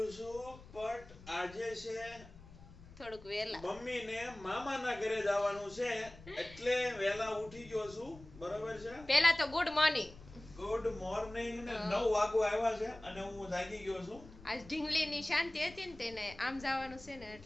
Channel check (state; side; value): noise; left; rumble, 19 dB below the sound